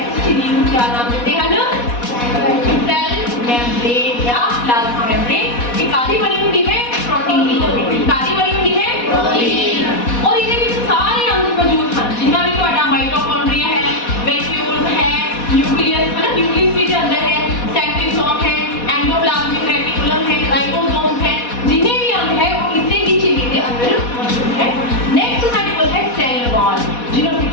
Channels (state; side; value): late; right; 4.1 ms